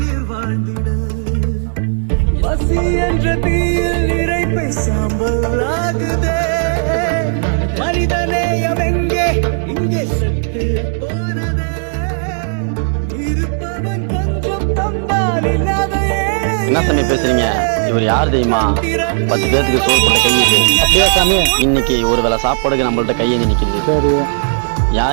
என்ன சாமி பேசுறீங்க? இவர் யார் தெரியுமா? 10 பேருக்கு சோறு போட்ட கை இது. அப்படியா சாமி? இன்னைக்கு ஒரு வேளை சாப்பாடுக்கு நம்மள்ட்ட கையை நிற்கிது. சரி,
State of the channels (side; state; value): left; silent; digital silence